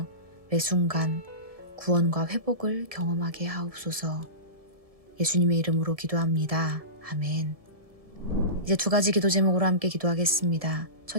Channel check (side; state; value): left; late; 1.7 ms